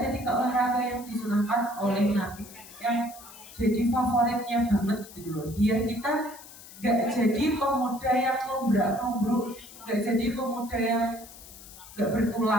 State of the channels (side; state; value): left; noise; hiss, 18 dB below the sound